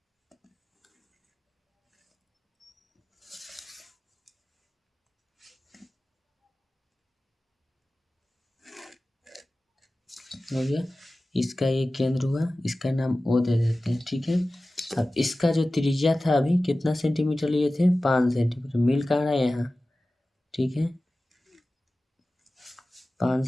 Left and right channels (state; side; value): normal; both; correlation 0.96